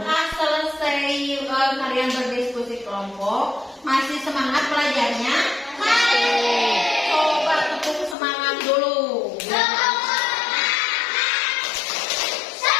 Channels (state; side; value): drops out; right; at 8.2 s